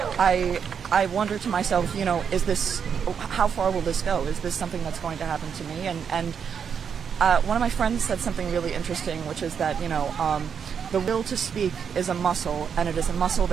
and I wonder to myself, is this? How far will this go? Is this something that's going to happen to me? And one of my friends said something really interesting, which is that, the will to speak is a muscle, and it is a muscle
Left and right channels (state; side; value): quieter; left; 7.1 dB